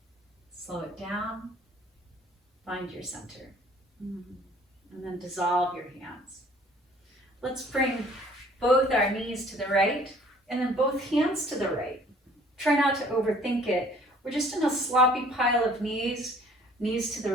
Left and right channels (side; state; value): both; normal; correlation 0.55